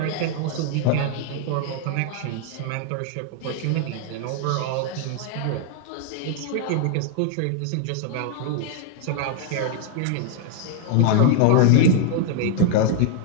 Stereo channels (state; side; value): different; both; correlation 0.00